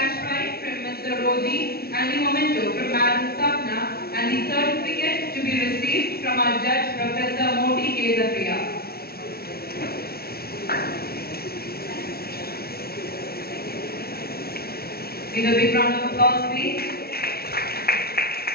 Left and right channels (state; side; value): late; right; 0.44 ms